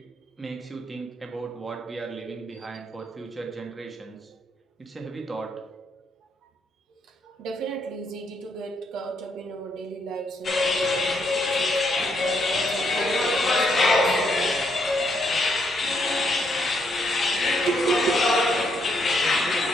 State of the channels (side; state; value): both; normal; correlation 0.75